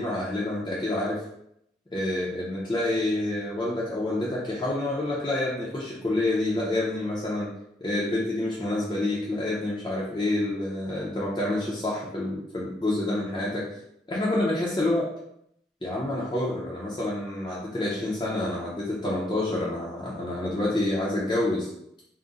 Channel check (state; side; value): normal; both; correlation 0.72